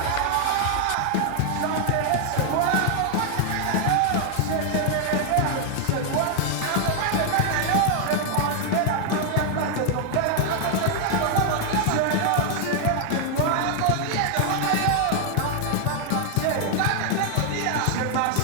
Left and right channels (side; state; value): both; different; correlation 0.00